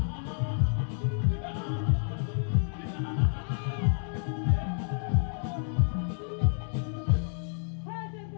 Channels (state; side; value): silent; right; 58 dB below the other